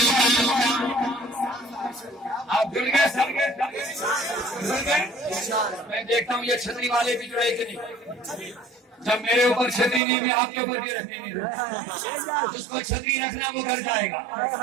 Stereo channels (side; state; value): left; drops out; at 10.0 s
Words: آپ جڑ گئے سب میں دیکھتا ہوں یہ چھتری والے بھی جڑے کہ نہیں. جب میرے اوپر چھتری نہیں میں آپ کے اوپر بھی رکھنے نہیں رہا. جس کو چھتری رکھنا وہ گھر جائے گا.